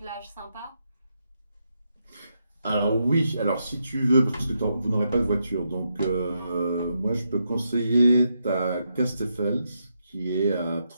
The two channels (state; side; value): inverted; both; correlation -0.82